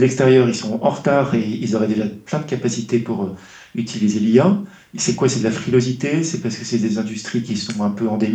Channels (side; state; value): both; identical; correlation 1.00